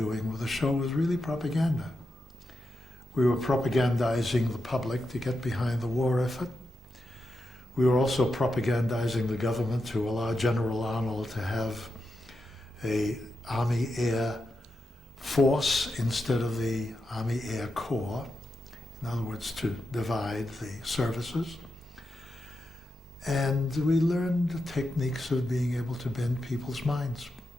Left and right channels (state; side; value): normal; both; correlation 0.87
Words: with the show was really propaganda. We were propagandizing the public to get behind the war effort. We were also propagandizing the government to allow General Arnold to have a Army Air Force instead of the Army Air Corps. In other words, to divide the services. And we learned the techniques of being able to bend people's minds.